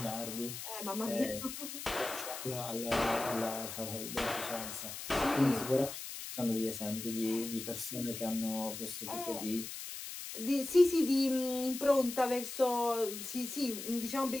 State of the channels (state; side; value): noise; left; hiss, 8 dB below the sound